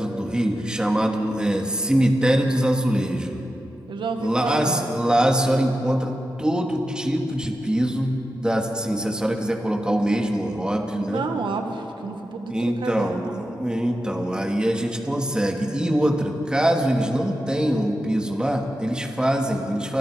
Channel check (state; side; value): normal; both; correlation 0.90